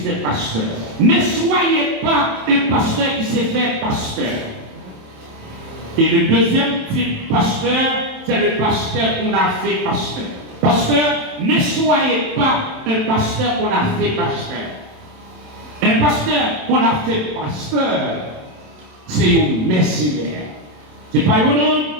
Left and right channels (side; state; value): left; late; 27 ms